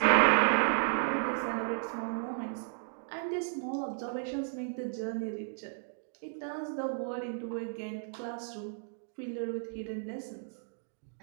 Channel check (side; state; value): left; silent; digital silence